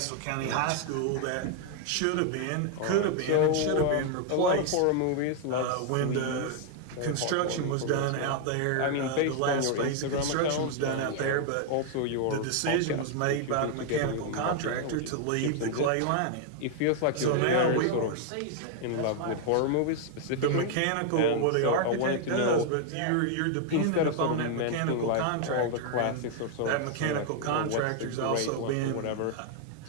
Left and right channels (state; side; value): different; both; correlation 0.00